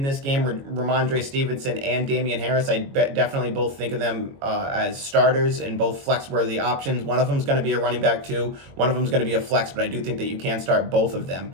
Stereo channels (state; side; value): late; left; 22 ms